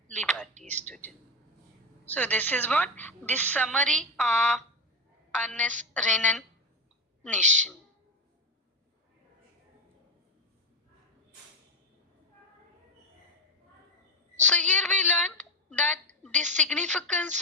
liberty, student. So this is what this summary of Ernest Renan nation. So here we learned that the significance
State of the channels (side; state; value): both; normal; correlation 0.13